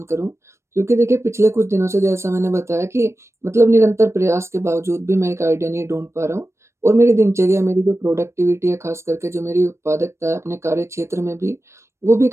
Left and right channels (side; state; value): left; late; 0.13 ms